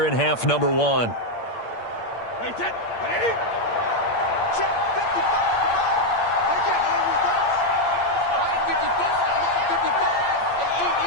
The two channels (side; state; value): right; late; 8.7 ms